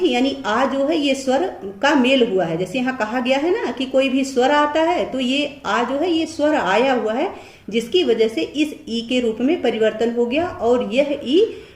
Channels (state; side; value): identical; both; correlation 1.00